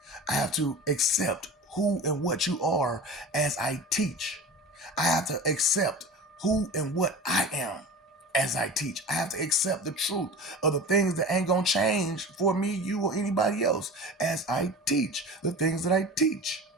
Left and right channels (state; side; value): normal; both; correlation 0.34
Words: I have to accept who and what you are as I teach. I have to accept who and what I am as I teach. I have to accept the truth of the things that ain't gonna change for me, you, or anybody else as I teach the things that I teach.